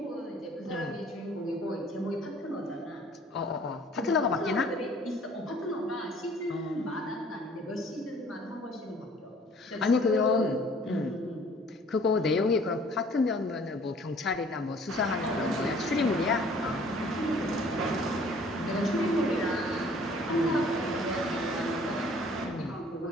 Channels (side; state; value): both; normal; correlation 0.54